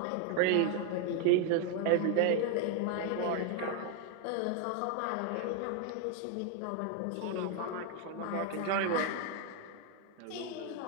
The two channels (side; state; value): both; different; correlation 0.01